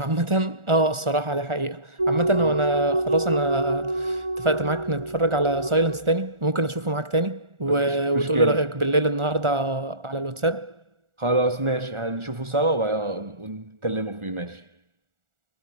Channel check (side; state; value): left; late; 1.4 ms